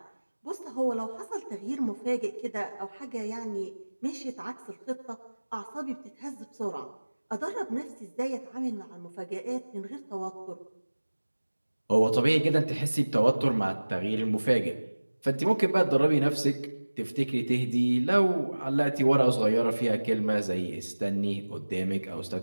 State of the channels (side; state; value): both; inverted; correlation -1.00